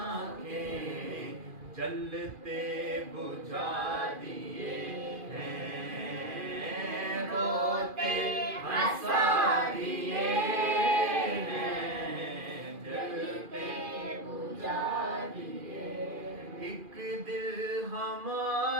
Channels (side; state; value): left; late; 2.4 ms